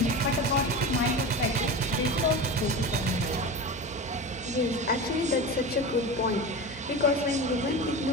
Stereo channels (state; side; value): normal; both; correlation 0.27